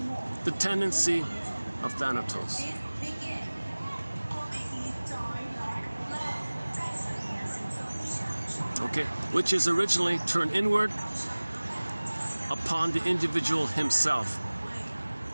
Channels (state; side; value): inverted; both; correlation -1.00